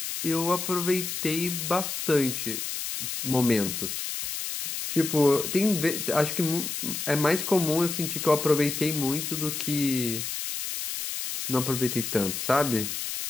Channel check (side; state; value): left; noise; hiss, 4 dB below the sound